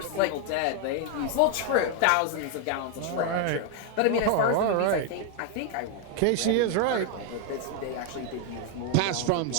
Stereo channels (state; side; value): different; both; correlation 0.01